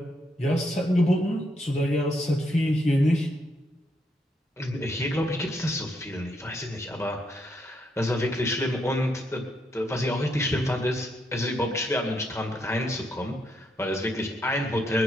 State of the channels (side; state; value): both; normal; correlation 0.77